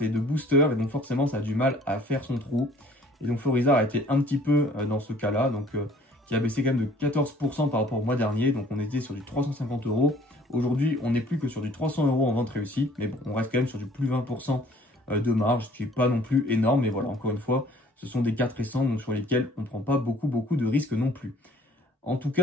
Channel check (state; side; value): normal; both; correlation 0.55